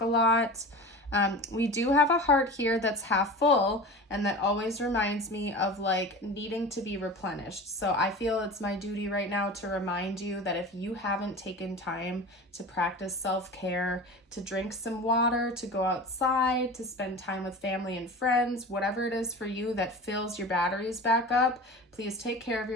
lot. We do have a heart here that's half full, and that always reminds me of like needing to be replenished. So I feel it's my duty right now to remind you that if you haven't taken time to practice self-care, to drink some water, to go outside, to spend time with family and friends, whatever it is for you that fills your batteries back up, please take care of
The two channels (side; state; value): both; normal; correlation 0.33